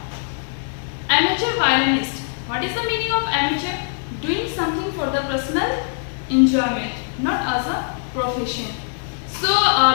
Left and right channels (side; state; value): right; silent; digital silence